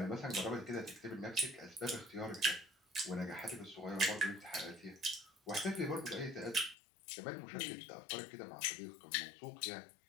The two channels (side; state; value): right; drops out; at 6.8 s